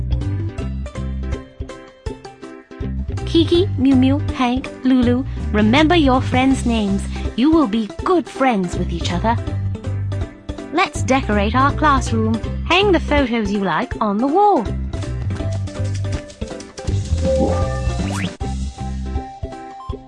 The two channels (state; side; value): identical; both; correlation 1.00